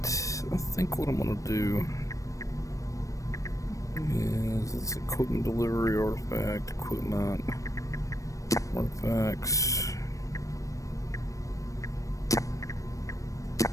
I think what I'm gonna do is it's equipment delivery, artifact, equipment, artifacts.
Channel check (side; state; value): right; late; 0.16 ms